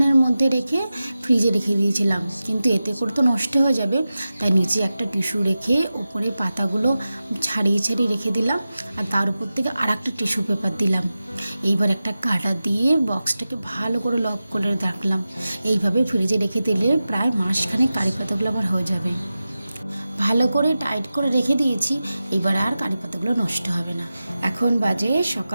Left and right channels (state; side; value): inverted; both; correlation -0.94